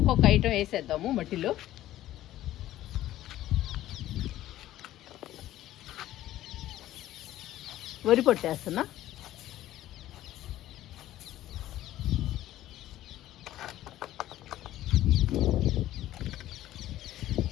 ఐటెం వేసేద్దాము మట్టిలో. వరి పొట్టేస్తున్నా.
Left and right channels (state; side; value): quieter; right; 14.1 dB